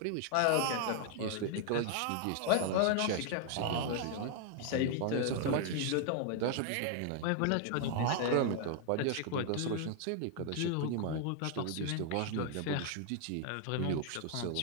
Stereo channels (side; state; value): both; different; correlation 0.00